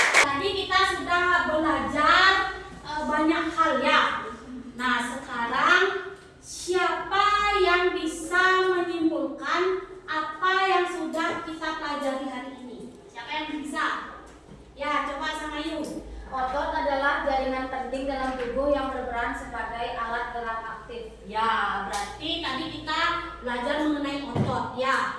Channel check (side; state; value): both; identical; correlation 1.00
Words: Tadi kita sudah belajar banyak hal ya. Nah, sekarang siapa yang bisa menyimpulkan apa yang sudah kita pelajari hari ini? Siapa yang bisa? Ya, coba sama Yu. otot adalah jaringan penting dalam tubuh yang berperan sebagai alat gerak aktif. Ya, berarti tadi kita belajar mengenai otot